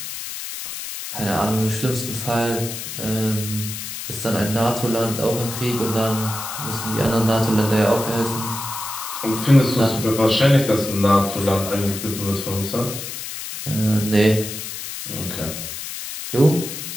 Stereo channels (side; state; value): left; noise; hiss, 8 dB below the sound